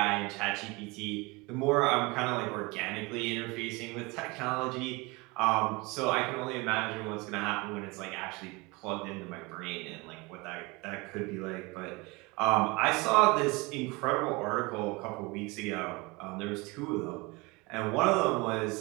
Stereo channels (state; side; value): quieter; left; 25.3 dB